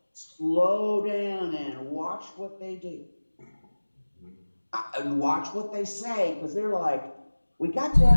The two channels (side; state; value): both; inverted; correlation -1.00